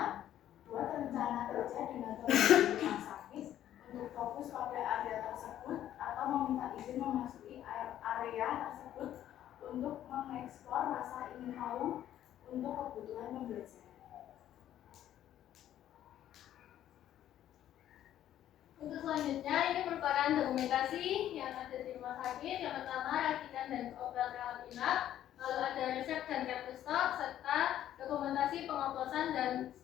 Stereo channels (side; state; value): right; quieter; 11.7 dB